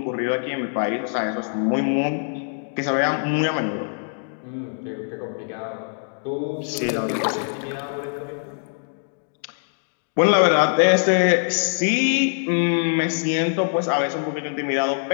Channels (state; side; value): silent; right; digital silence